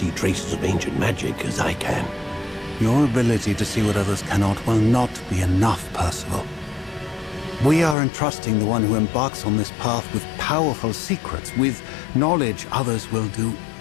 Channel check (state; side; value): drops out; right; at 8.0 s